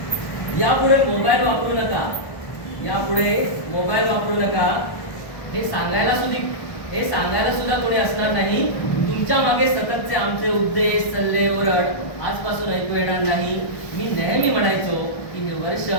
यापुढे मोबाईल वापरू नका, यापुढे मोबाईल वापरू नका हे सांगायला सुद्धा कोणी असणार नाही. तुमच्या मागे सततचे आमचे उद्देश, सल्ले, ओरड आजपासून ऐकू येणार नाही. मी नेहमी म्हणायचो की हे वर्ष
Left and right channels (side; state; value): right; late; 1.2 ms